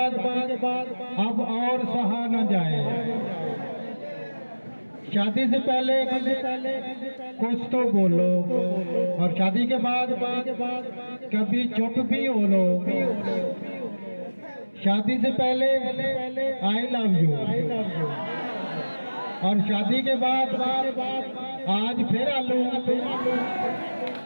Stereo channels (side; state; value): both; inverted; correlation -1.00